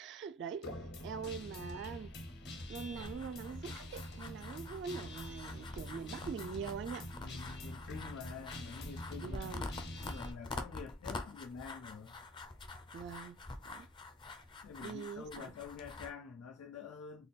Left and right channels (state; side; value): normal; both; correlation 0.46